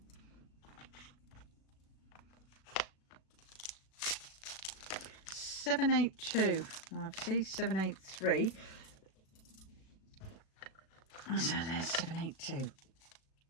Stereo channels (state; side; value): late; right; 36 ms